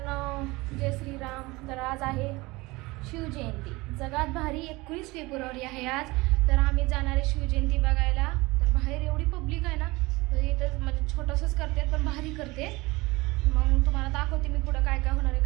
जय श्रीराम। तर आज आहे शिवजयंती, जगात भारी 21 फेब्रुवारी आहे आज। तर आम्ही जाणार आहे शिवजयंती बघायला। तर बाहेर एवढी पब्लिक आहे ना, तर इथं म्हणजे छोटंसंच करते पण भारी करते। मग तुम्हाला दाखवते मी पुढं काय काय होणार आहे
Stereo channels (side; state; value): left; quieter; 22.5 dB